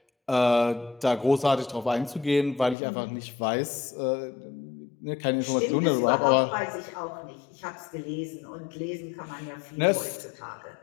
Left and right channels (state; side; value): drops out; right; at 2.8 s